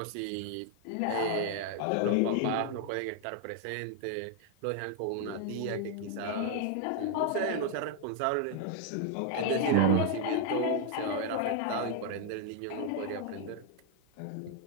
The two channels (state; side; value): different; both; correlation 0.00